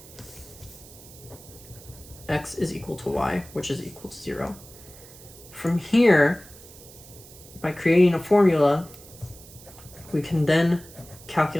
x is equal to y, which is equal to 0. From here, by creating a formula, we can then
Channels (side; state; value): right; noise; hiss, 20 dB below the sound